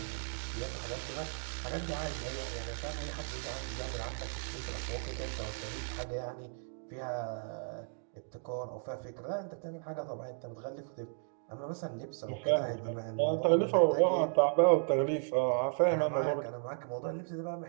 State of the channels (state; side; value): silent; left; digital silence